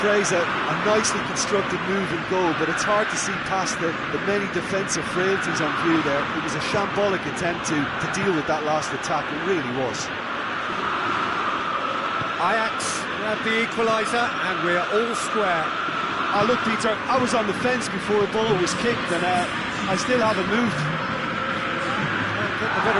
praise a nicely constructed move and goal, but it's hard to see past the many defensive frailties on view there. It was a shambolic attempt to deal with that last attack, it really was. Ajax grab the equaliser, and we're all square. Oh, look, Peter, I was on the fence before the ball was kicked, and I still haven't moved. Can't get the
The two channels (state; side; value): identical; both; correlation 1.00